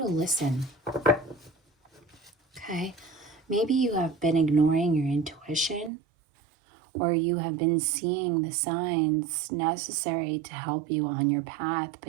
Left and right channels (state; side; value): drops out; left; at 5.9 s